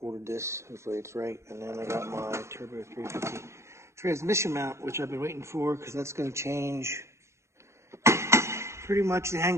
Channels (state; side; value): late; left; 0.13 ms